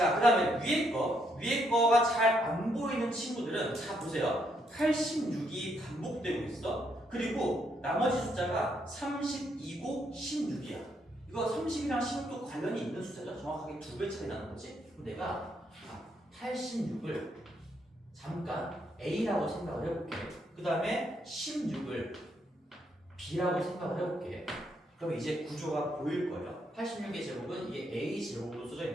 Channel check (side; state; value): both; normal; correlation 0.75